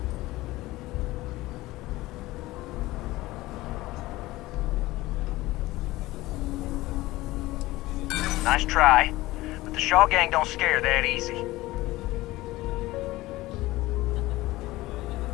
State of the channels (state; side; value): quieter; right; 18.5 dB